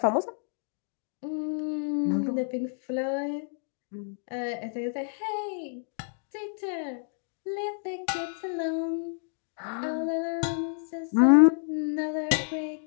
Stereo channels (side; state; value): right; silent; digital silence